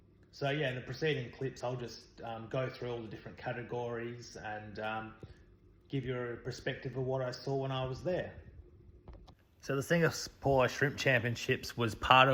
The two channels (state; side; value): identical; both; correlation 1.00